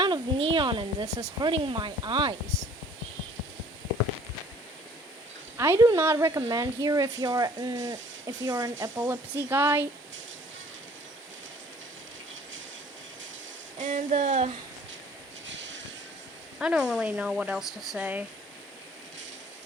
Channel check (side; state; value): both; normal; correlation 0.54